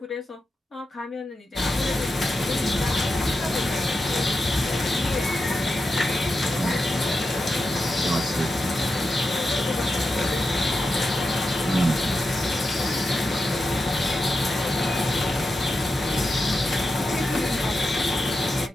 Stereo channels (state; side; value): normal; both; correlation 0.89